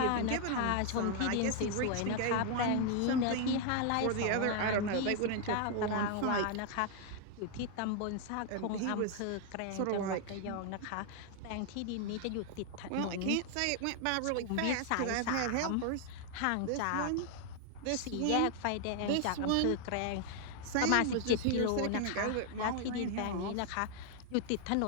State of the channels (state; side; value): different; both; correlation 0.00